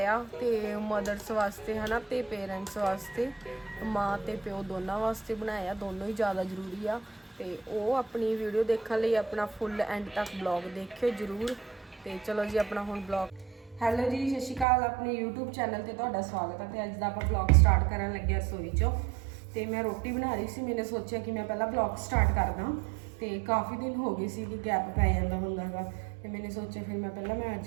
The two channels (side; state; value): left; drops out; at 14.7 s